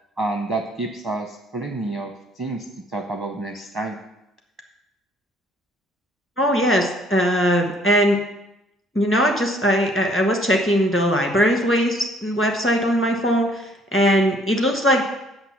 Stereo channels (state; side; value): normal; both; correlation 0.61